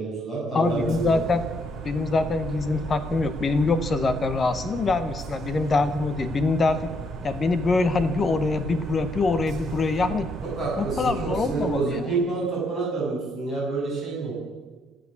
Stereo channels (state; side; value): normal; both; correlation 0.73